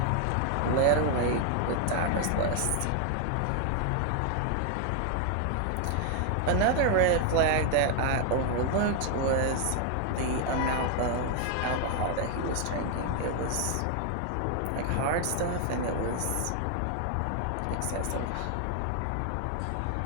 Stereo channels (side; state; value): both; different; correlation 0.00